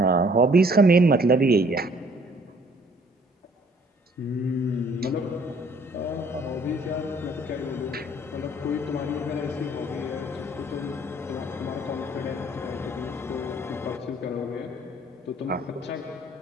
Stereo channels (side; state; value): both; normal; correlation 0.59